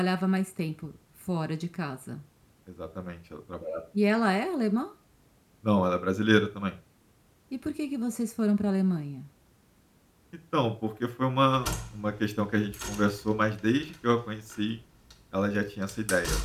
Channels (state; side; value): identical; both; correlation 1.00